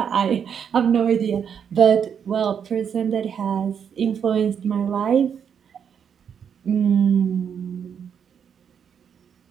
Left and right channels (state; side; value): quieter; left; 7.7 dB